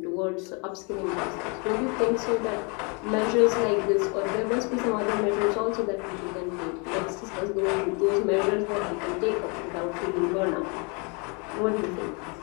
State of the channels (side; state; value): right; quieter; 33.1 dB